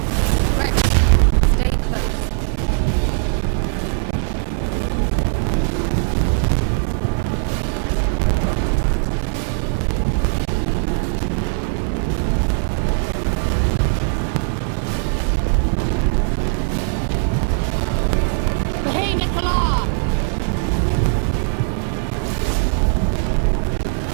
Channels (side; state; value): left; silent; digital silence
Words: Rex, stay close.